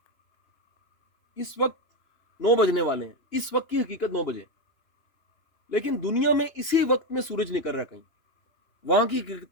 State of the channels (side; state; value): right; late; 3.1 ms